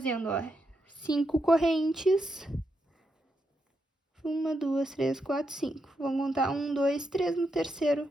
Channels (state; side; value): normal; both; correlation 0.83